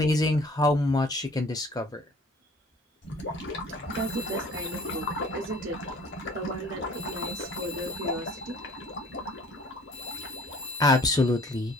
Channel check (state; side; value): normal; both; correlation 0.51